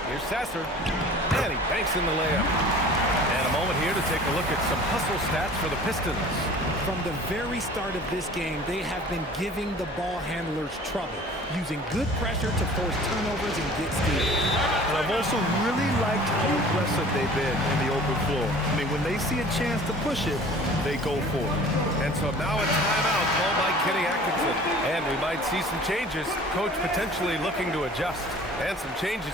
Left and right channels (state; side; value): normal; both; correlation 0.46